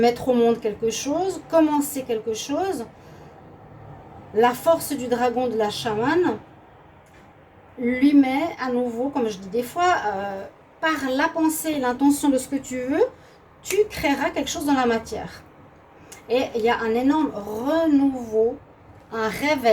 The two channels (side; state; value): both; identical; correlation 1.00